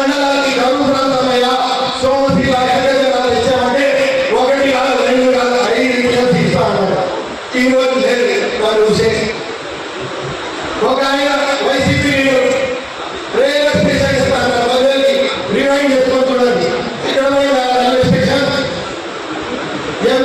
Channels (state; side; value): identical; both; correlation 1.00